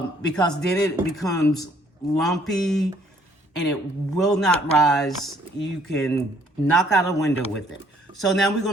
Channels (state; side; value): normal; both; correlation 0.62